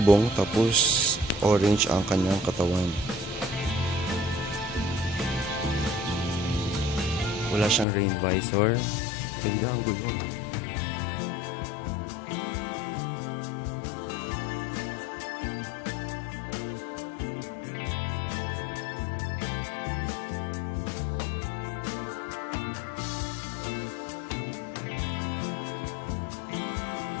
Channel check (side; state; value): right; drops out; at 7.9 s